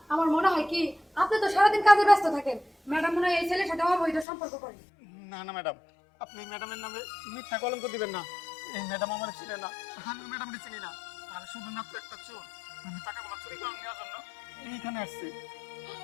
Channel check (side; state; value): right; drops out; at 4.2 s